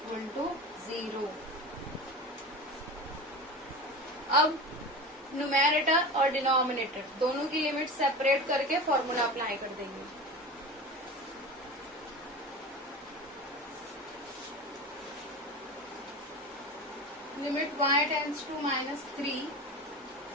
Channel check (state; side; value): normal; both; correlation 0.30